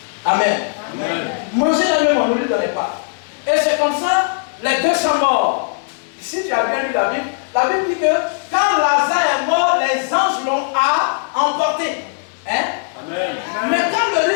Amen. Amen. Manger la même, on ne lui donnait pas. Et c'est comme ça, les deux sont morts. Si tu as bien lu la Bible dit que quand Lazare est mort, les anges l'ont emporté. Hein? Amen. Mais quand le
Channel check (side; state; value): right; silent; 67 dB below the other